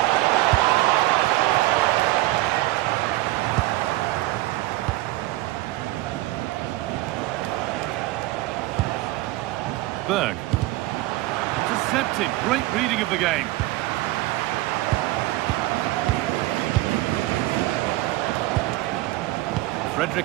Berg. Intercepted. Great reading of the game.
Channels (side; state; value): left; quieter; 18.3 dB